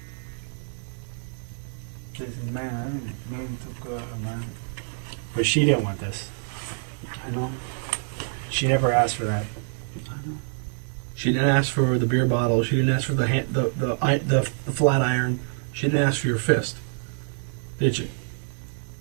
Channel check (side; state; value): left; silent; digital silence